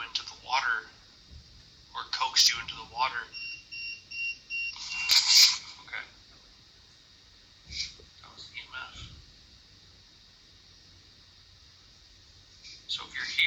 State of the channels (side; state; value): both; identical; correlation 1.00